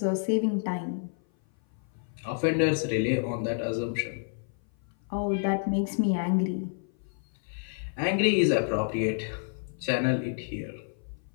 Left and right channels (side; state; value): right; silent; 56 dB below the other